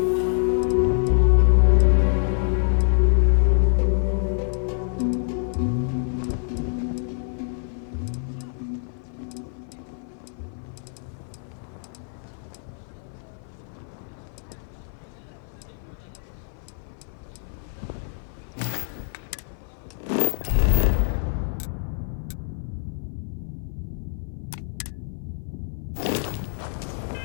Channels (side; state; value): right; silent; 56 dB below the other